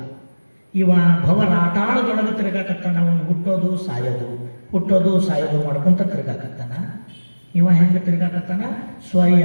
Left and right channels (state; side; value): inverted; both; correlation -1.00